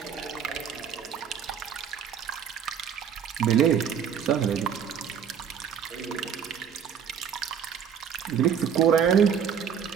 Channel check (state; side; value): quieter; left; 8.0 dB